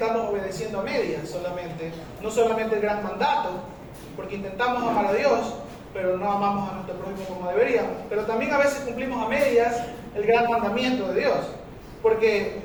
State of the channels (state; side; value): identical; both; correlation 1.00